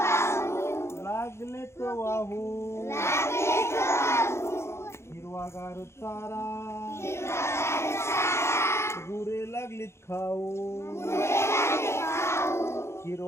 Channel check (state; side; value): late; right; 0.13 ms